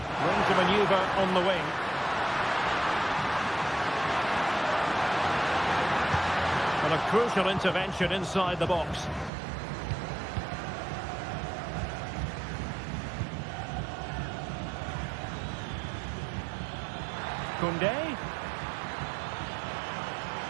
Room to manoeuvre on the wing. A crucial intervention inside the box. Koundé.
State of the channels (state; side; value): drops out; left; at 9.3 s